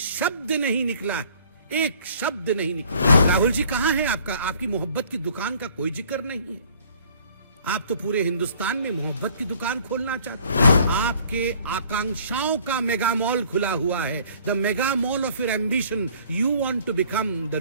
नहीं निकला, एक शब्द नहीं निकला। राहुल जी कहां है आपकी मोहब्बत की दुकान का कोई जिक्र नहीं है। आप तो पूरे हिंदुस्तान में मोहब्बत की दुकान खोलना चाहते हैं। आपके आकांक्षाओं का मेगा मॉल खुला हुआ है, the mega mall of your ambition. You want to become the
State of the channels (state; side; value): inverted; both; correlation -0.55